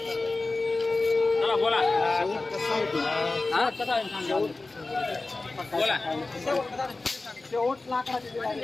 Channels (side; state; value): right; quieter; 3.3 dB